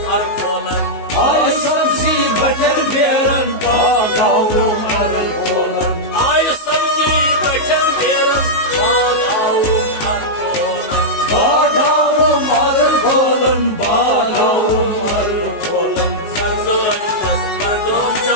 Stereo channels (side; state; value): right; late; 19 ms